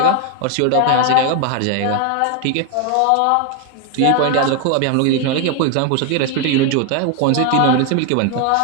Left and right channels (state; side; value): different; both; correlation 0.01